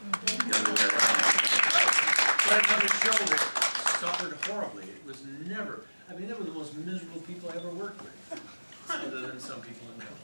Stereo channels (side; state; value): both; inverted; correlation -1.00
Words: other way around. But another show that suffered horribly. It was never, they were the most miserable people I ever worked with. Other than some people in that